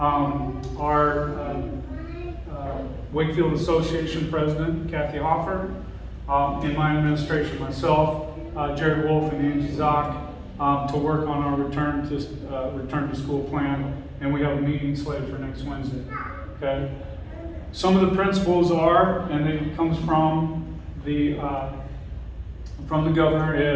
Wakefield Association President, Kathy Hoffer, and my administration, myself, Jared Wolf and Angie Zock, to work on our return to school plan, and we have a meeting slated for next Wednesday. Okay. Some of the principles are, and it comes from the governor,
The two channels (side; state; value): both; identical; correlation 1.00